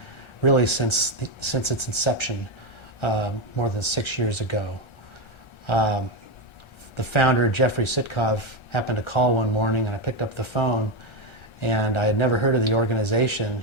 really since its inception more than 6 years ago. The founder, Jeffrey Sitkov, happened to call one morning, and I picked up the phone, and I had never heard of the organization,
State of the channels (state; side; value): late; right; 1.3 ms